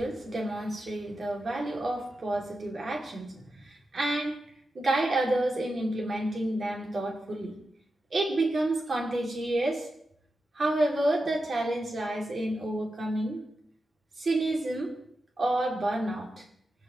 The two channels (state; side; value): normal; both; correlation 0.90